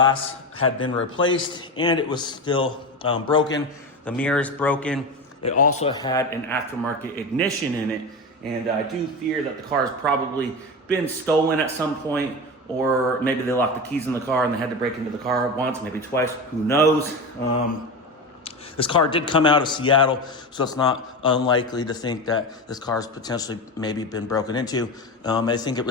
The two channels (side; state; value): both; normal; correlation 0.23